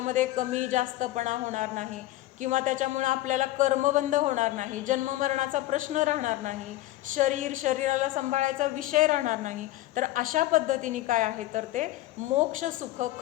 कमी जास्तपणा होणार नाही किंवा त्याच्यामुळं आपल्याला कर्मबंध होणार नाही, जन्ममरणाचा प्रश्न राहणार नाही, शरीराला सांभाळायचा विषय राहणार नाही. तर अशा पद्धतीने काय आहे तर ते मोक्ष सुख,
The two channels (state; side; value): quieter; right; 16.3 dB